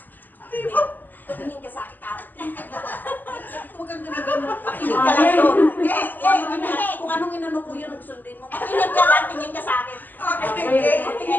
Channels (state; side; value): late; right; 0.086 ms